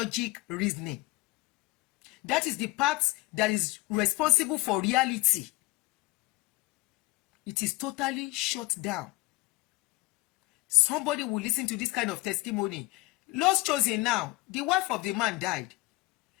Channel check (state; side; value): quieter; right; 22.3 dB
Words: reasoning. That is the part that is responsible for reality. It is totally shut down. Somebody will listen to this kind of testimony. Lost chosen now, the wife of the man died.